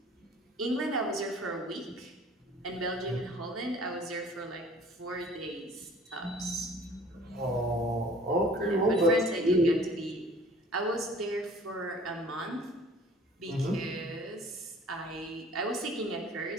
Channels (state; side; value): normal; both; correlation 0.50